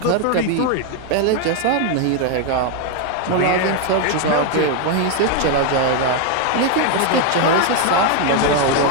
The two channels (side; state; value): both; different; correlation 0.01